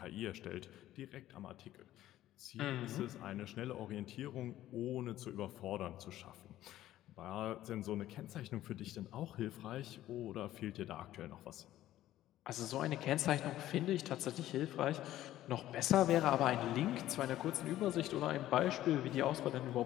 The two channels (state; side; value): quieter; right; 13.8 dB